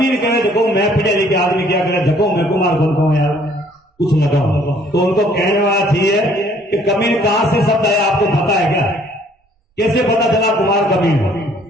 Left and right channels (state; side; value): normal; both; correlation 0.60